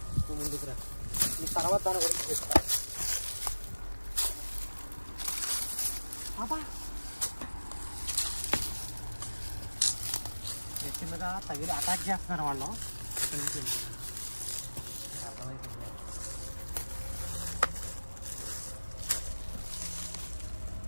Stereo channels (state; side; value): inverted; both; correlation -1.00